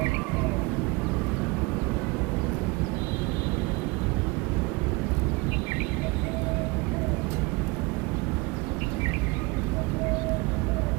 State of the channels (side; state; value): left; quieter; 25.2 dB